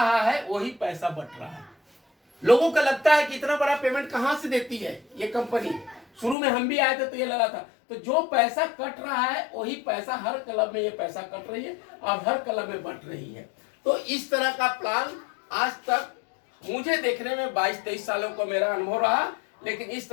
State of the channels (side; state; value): right; drops out; at 6.4 s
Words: है वही पैसा बट रहा है। लोगों को लगता है कि इतना बड़ा पेमेंट कहां से देती है ये कंपनी। शुरू में हम भी आए थे तो ये लगा था, तो जो पैसा कट रहा है वही पैसा हर क्लब में ये पैसा कट रही है और हर क्लब में बट रही है। तो इस तरह का प्लान आज तक मुझे देखने में 22-23 सालों को मेरा अनुभव रहा, लेकिन इस